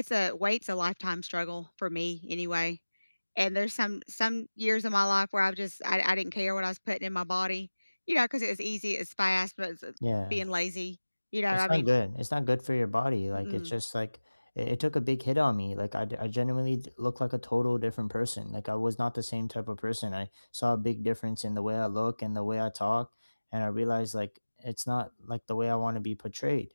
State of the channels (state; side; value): inverted; both; correlation -1.00